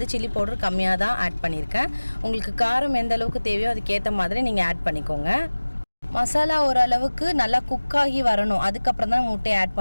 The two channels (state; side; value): inverted; both; correlation -1.00